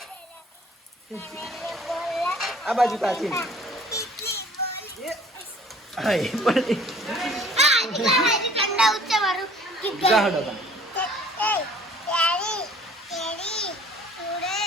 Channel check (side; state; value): both; normal; correlation 0.52